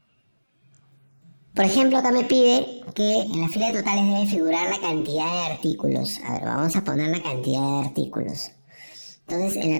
Por ejemplo, acá me pide que en la fila de totales debe figurar la cantidad de artículos. A ver, vamos a poner la cantidad de artículos. Entonces, en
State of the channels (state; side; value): inverted; both; correlation -1.00